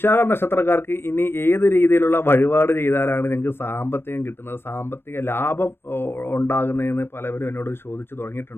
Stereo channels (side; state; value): right; late; 0.11 ms